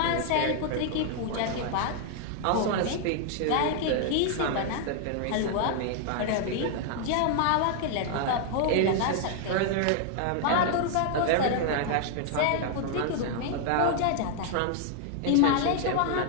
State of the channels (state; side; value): different; both; correlation 0.00